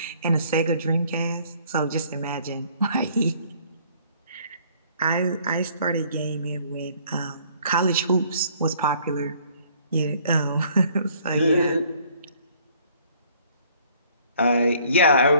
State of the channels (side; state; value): both; inverted; correlation -0.59